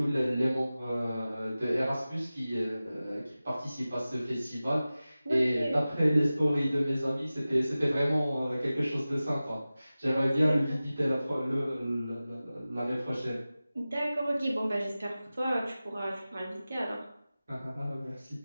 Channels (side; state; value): both; inverted; correlation -0.96